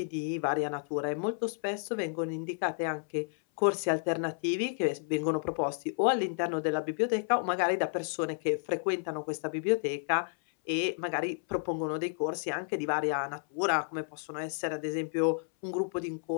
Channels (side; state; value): right; silent; 57 dB below the other